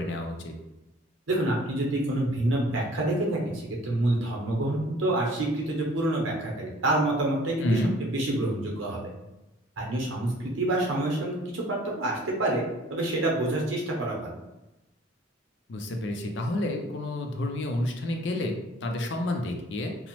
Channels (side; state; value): both; normal; correlation 0.53